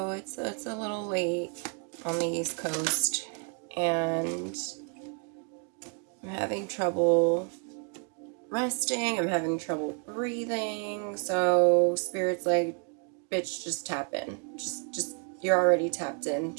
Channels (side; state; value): left; quieter; 38.3 dB